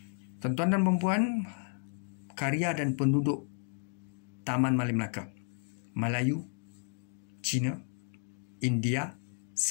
Tuan-tuan dan perempuan, karya dan penduduk Taman Malim Melaka, Melayu, Cina, India,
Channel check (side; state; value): right; silent; 56 dB below the other